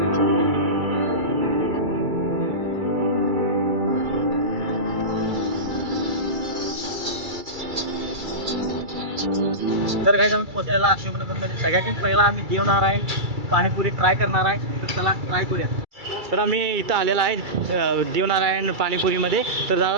तर काय आम्ही पोहोचलेला अशोकनगरमध्ये. सगळ्यात पहिला आम्ही जेवणार आहे, पाणीपुरी ट्राय करणार आहे. तर चला ट्राय करूया. तर आम्ही इथं आलेला आहे देवनारायण पानीपुरीमध्ये. तर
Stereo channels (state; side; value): late; left; 2.3 ms